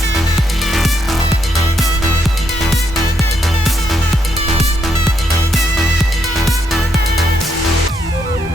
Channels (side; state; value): both; normal; correlation 0.77